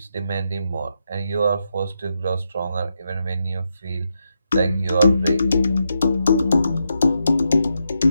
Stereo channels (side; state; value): both; inverted; correlation -0.83